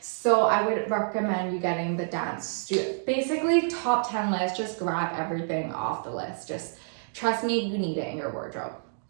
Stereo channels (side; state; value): left; silent; digital silence